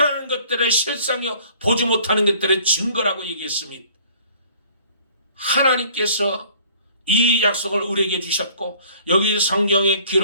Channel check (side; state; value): both; inverted; correlation -0.55